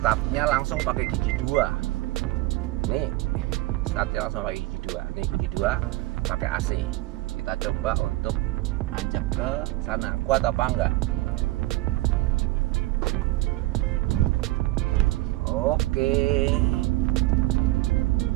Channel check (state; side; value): quieter; left; 19.5 dB